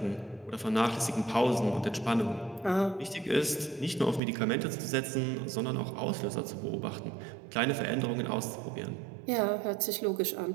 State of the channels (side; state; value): left; drops out; at 4.2 s